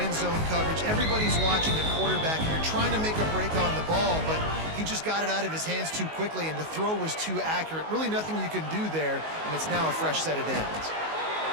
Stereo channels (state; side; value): late; left; 19 ms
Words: zone coverage. Everybody's watching the quarterback, and you're trying to make a break on the ball, but he just got it out of his hands too quickly, and the throw was too accurate. Really nothing you can do there, and it's now a fresh set of downs.